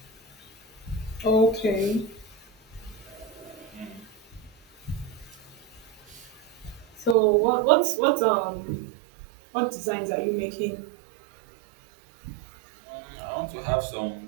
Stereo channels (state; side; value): drops out; left; at 7.2 s